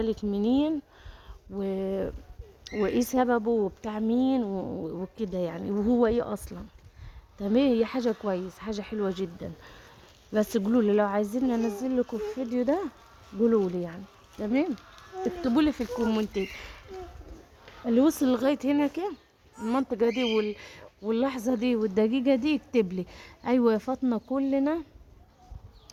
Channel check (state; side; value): identical; both; correlation 1.00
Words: منين و... وايه سببه وبتاع مين وكده يعني، وهو ايه اصلا. تمام، هي حاجه كويس، حاجه حلوه جدا، بس قولوا لي لو عايزين انزل لكم الفيديو ده قولوا لي يعني. تمام، اكتبوا لي في الكومنتات اللي وصل لغايه هنا كده المنطقه دي واللحظه دي والدقيقه دي، يكتب لي ايوه يا فاطمه كلنا